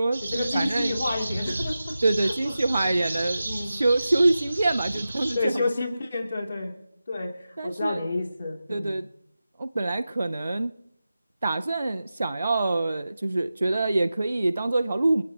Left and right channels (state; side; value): inverted; both; correlation -0.93